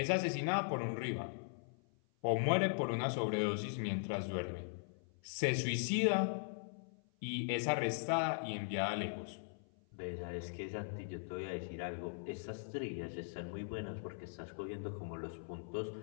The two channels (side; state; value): right; silent; 51 dB below the other